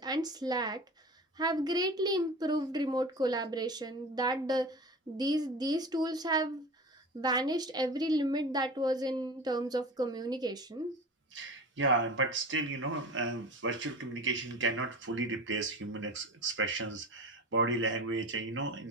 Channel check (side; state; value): both; normal; correlation 0.33